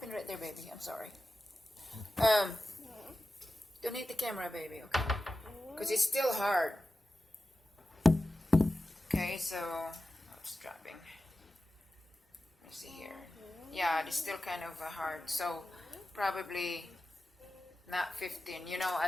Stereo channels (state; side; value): normal; both; correlation 0.94